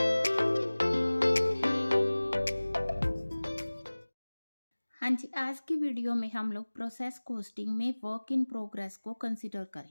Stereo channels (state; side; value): inverted; both; correlation -1.00